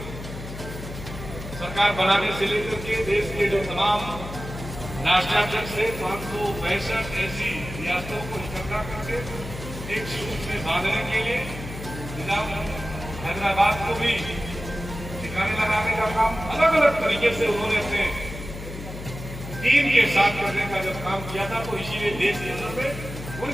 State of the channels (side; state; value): left; noise; hum, 10 dB below the sound